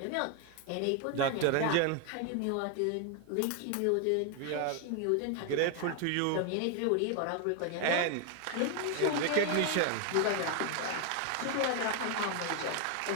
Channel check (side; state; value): both; different; correlation 0.00